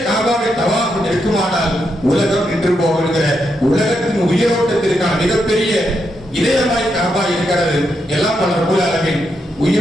காபாவை தவாஃப் நிற்குமானால் உலகம் நின்று போகிற உலகத்தின் உயிரோட்டத்திற்கான மிகப்பெரிய இதயமாய் காபா இருக்கிறது. எல்லாம் பல ரப்பல் ஆலமீன்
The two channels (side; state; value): both; normal; correlation 0.82